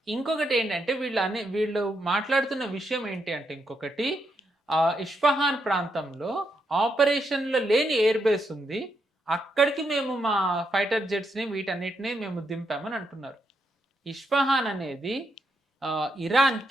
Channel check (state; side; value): normal; both; correlation 0.80